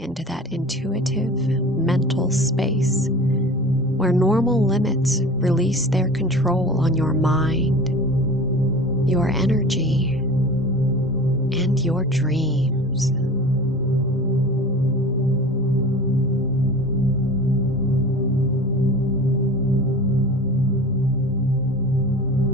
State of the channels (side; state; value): both; normal; correlation 0.37